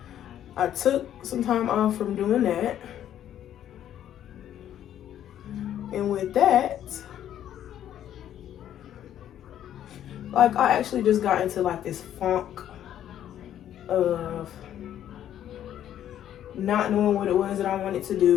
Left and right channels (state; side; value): quieter; right; 10.9 dB